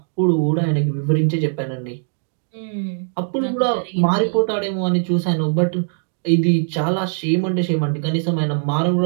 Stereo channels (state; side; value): silent; left; digital silence